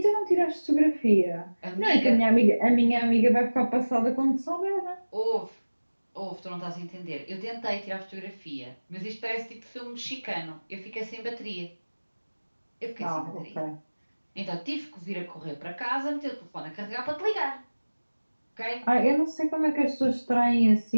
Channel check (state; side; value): inverted; both; correlation -1.00